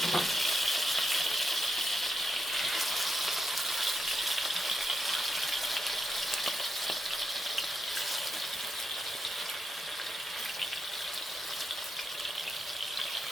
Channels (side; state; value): both; normal; correlation 0.85